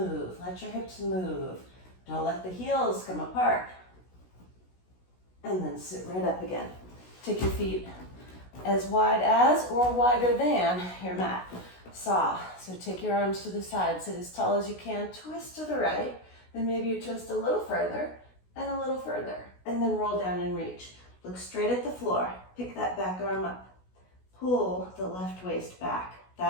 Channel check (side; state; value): right; late; 16 ms